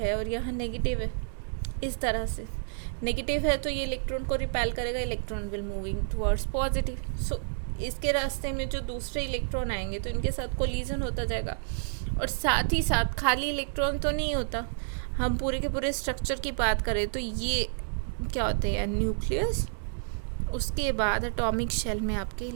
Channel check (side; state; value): left; silent; digital silence